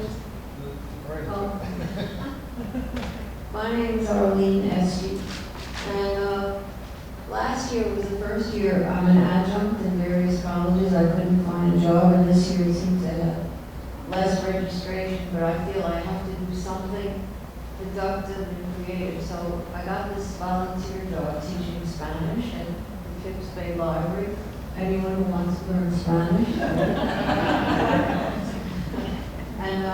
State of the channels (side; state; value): both; identical; correlation 1.00